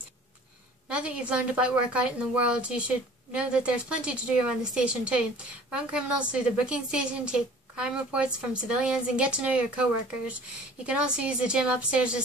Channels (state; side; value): normal; both; correlation 0.48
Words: Now that you've learned about work out in the world, you should know that there's plenty to do around the station too. Run criminals through the booking station, take crime reports from civilians, and get to know your co-workers. You can also use the gym upstairs to